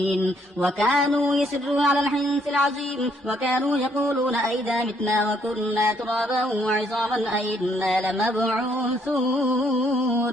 وكانوا يسرون على الحنث العظيم وكانوا يقولون أئذا متنا وكنا ترابا وعظاما أئنا لمبعوثون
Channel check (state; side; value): normal; both; correlation 0.69